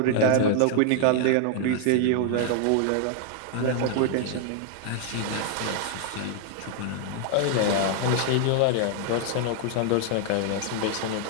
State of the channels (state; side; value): different; both; correlation 0.00